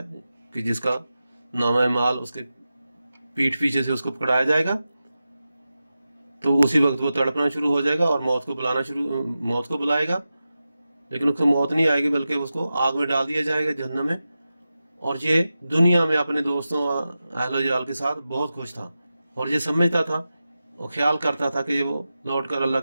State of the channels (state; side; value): inverted; both; correlation -0.92